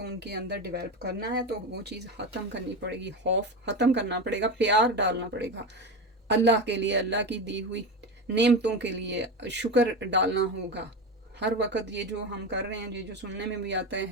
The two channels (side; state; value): both; normal; correlation 0.21